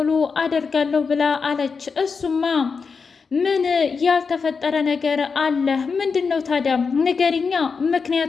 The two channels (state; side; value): quieter; right; 5.2 dB